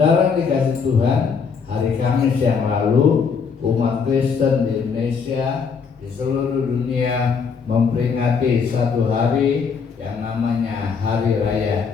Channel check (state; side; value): quieter; right; 5.8 dB